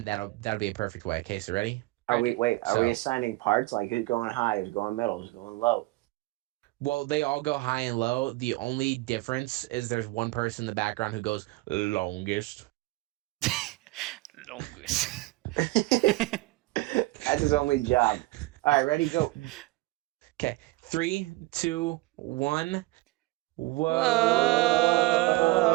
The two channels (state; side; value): quieter; left; 20.5 dB